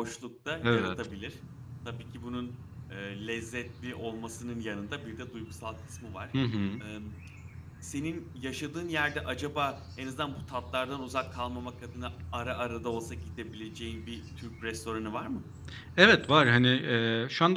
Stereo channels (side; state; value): both; identical; correlation 1.00